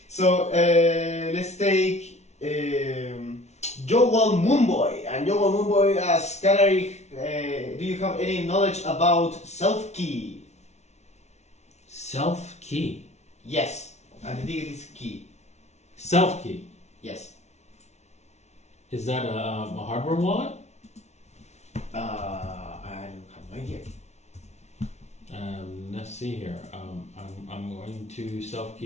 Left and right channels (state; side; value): late; right; 0.32 ms